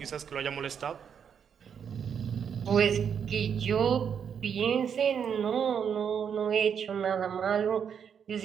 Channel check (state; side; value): quieter; left; 7.6 dB